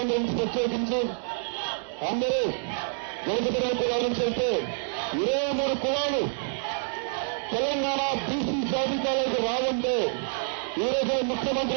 నుంచి ప్రత్యేకించి అందరూ వెనుకబడిన కులాల నుంచి వెళ్తే 23 కులాలు తెలంగాణ బీసీ జాబితాలోకి రావంటే ఈ రోజు ముఖ్యమంత్రి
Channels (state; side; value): silent; left; digital silence